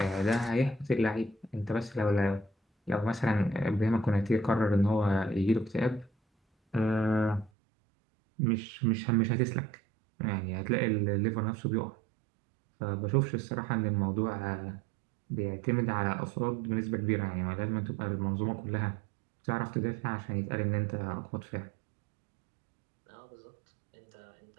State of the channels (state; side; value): drops out; left; at 7.5 s